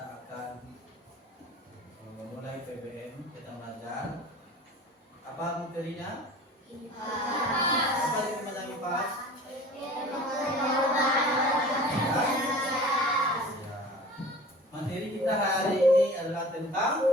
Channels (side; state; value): both; normal; correlation 0.42